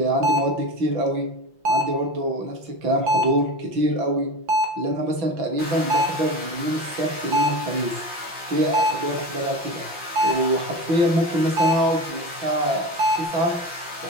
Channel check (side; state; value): left; late; 5.8 ms